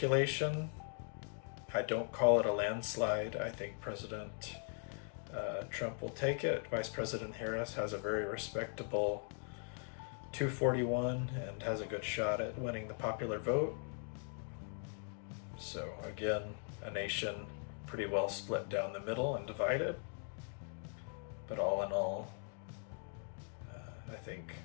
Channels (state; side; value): silent; right; 51 dB below the other